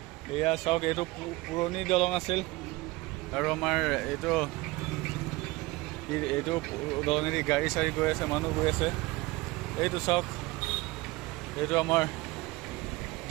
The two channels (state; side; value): quieter; left; 21.5 dB